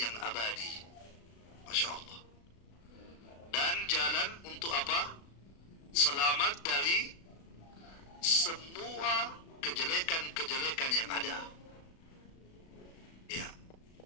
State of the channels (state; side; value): late; right; 36 ms